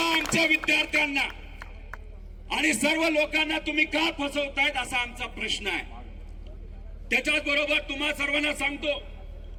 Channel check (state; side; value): identical; both; correlation 1.00